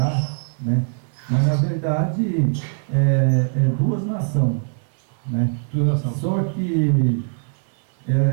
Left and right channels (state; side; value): silent; left; 63 dB below the other